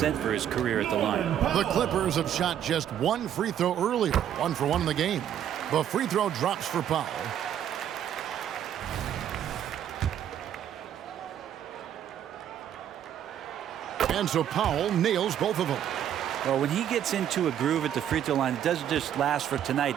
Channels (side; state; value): left; quieter; 10.1 dB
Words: for his career at the line. The Clippers have shot just 1 free throw earlier. 1 for 1 in the game. The free throw drops for Powell. And so Powell nails both of them. Well, when he gets into a groove at the free throw line, it doesn't just last for tonight.